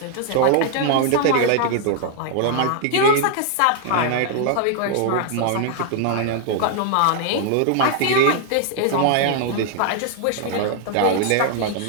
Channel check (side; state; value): both; different; correlation 0.00